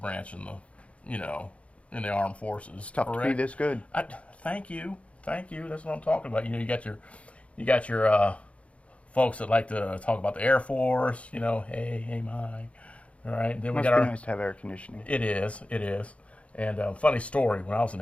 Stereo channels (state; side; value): late; right; 0.063 ms